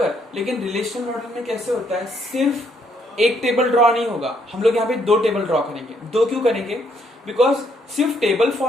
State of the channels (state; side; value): normal; both; correlation 0.71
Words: लेकिन रिलेशनल मॉडल में कैसे होता है, सिर्फ एक टेबल ड्रॉ नहीं होगा, हम लोग यहाँ पे 2 टेबल ड्रॉ करेंगे। 2 क्यों करेंगे, बिकॉज सिर्फ टेबल